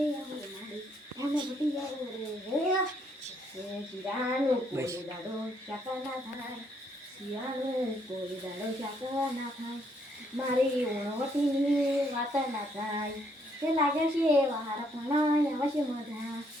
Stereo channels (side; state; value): both; normal; correlation 0.70